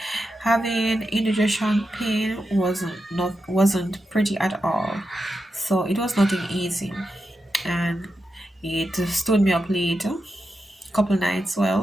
having indigestion pain wasn't pretty at all. So it was nothing easy, and it stood me up late, couple nights.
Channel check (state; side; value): normal; both; correlation 0.88